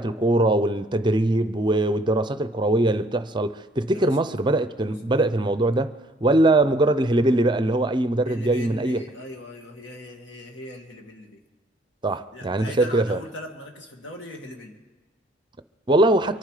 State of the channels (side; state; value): both; normal; correlation 0.61